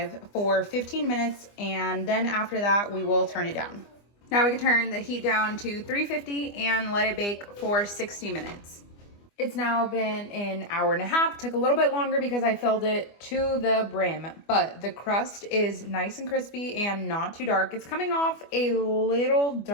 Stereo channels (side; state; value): right; late; 25 ms